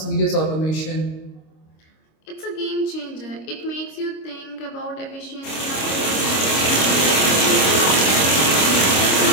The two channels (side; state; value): right; late; 26 ms